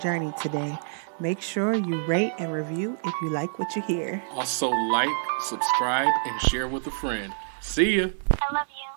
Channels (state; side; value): silent; left; digital silence